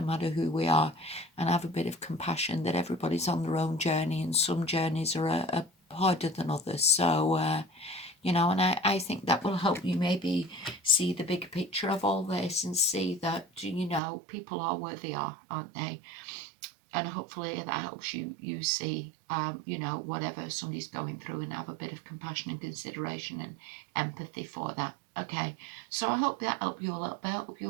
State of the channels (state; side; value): drops out; left; at 14.0 s